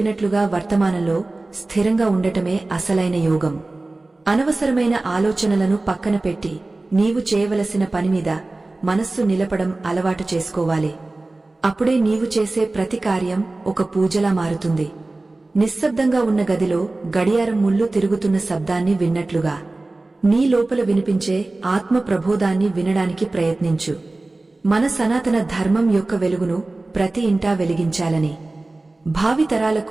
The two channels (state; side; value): quieter; left; 3.0 dB